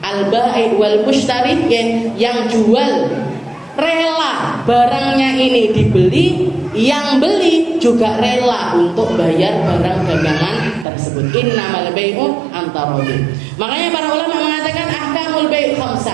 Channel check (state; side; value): drops out; left; at 10.9 s